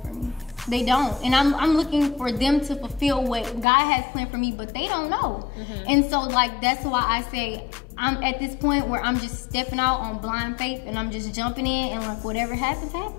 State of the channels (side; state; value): right; drops out; at 3.7 s